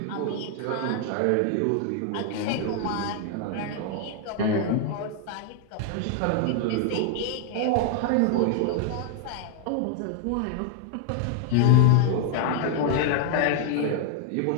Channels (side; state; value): both; different; correlation 0.00